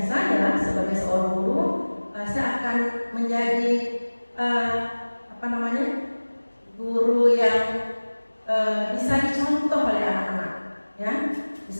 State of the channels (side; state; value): both; inverted; correlation -1.00